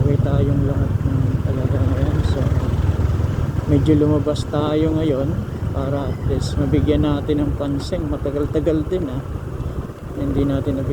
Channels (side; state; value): both; identical; correlation 1.00